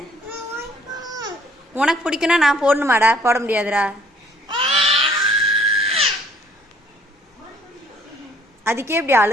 உனக்கு பிடிக்குன்னா நான் போடணுமாடா? போட முடியாதுடா. அதுக்கே இப்படி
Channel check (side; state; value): both; normal; correlation 0.60